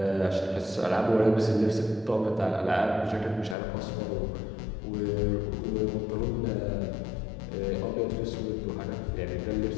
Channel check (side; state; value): right; drops out; at 3.6 s